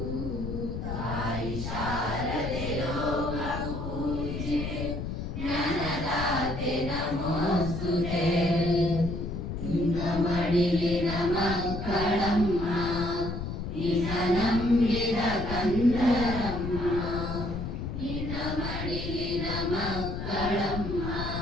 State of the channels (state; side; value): noise; left; rumble, 5 dB below the sound